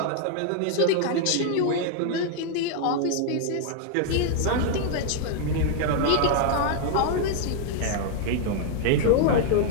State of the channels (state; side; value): different; both; correlation 0.00